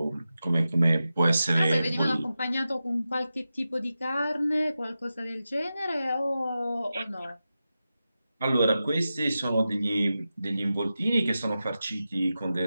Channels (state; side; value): inverted; both; correlation -0.92